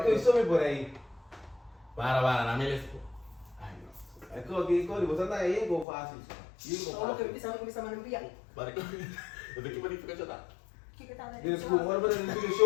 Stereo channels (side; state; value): right; drops out; at 5.9 s